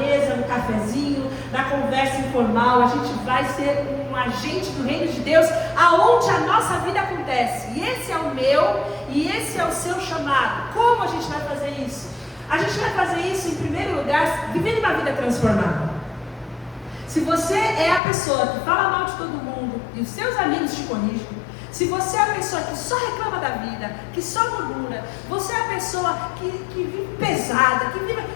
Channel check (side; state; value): right; drops out; at 18.0 s